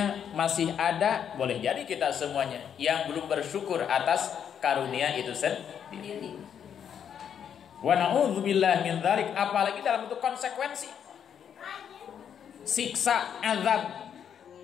masih ada, boleh jadi kita semuanya yang belum bersyukur atas karunia itu sendiri. Wa na'udzubillah min dzalik, apalagi dalam bentuk konsekuensi. Siksa, azab.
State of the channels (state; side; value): quieter; right; 8.4 dB